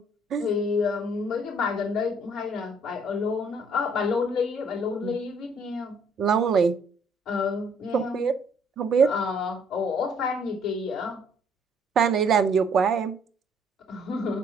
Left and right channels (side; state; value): both; normal; correlation 0.63